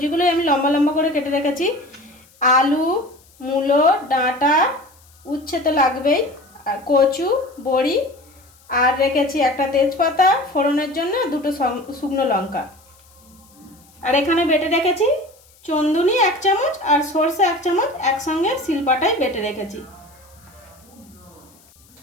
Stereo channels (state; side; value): noise; left; hiss, 29 dB below the sound